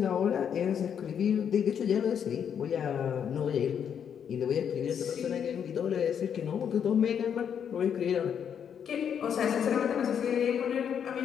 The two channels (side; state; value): right; quieter; 8.1 dB